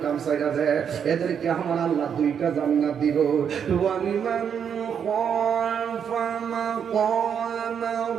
কাম সাইরা দেয়, এদেরকে আমার আল্লাহ 2টা জান্নাত দিব। ওয়ালিমান খাফা মাকামা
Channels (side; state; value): left; quieter; 7.7 dB